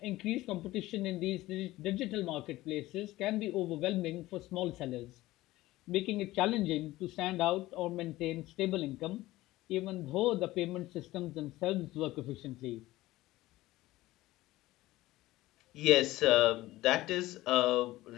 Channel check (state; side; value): quieter; right; 17.4 dB